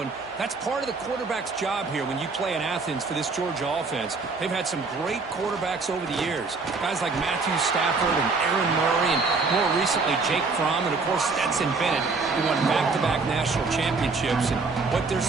And that's part of the quarterback's job here when you play in Athens for this Georgia offense. They've had some great quarterbacks over the years. Guys like Matthew Stafford and Aaron Murray, and more recently Jake Fromm, and of course Stetson Bennett, who won back-to-back national championships. And what they're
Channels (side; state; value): left; quieter; 4.2 dB